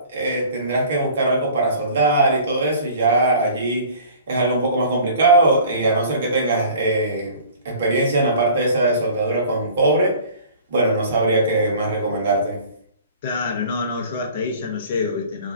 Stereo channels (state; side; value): inverted; both; correlation -0.47